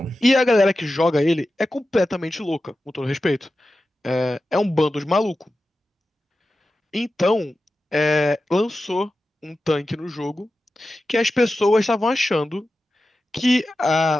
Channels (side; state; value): both; normal; correlation 0.93